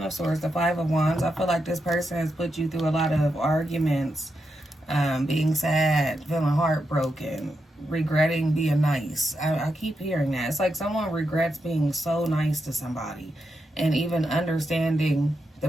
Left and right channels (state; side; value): normal; both; correlation 0.85